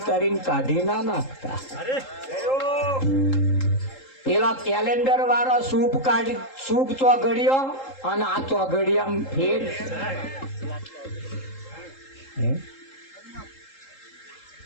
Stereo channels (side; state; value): right; late; 3.8 ms